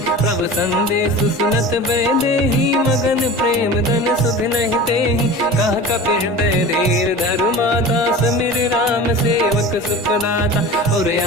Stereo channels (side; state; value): both; normal; correlation 0.35